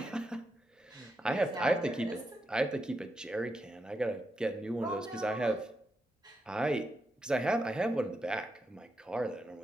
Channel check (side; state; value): both; normal; correlation 0.85